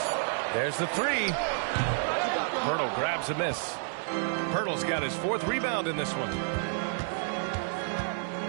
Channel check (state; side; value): silent; left; 58 dB below the other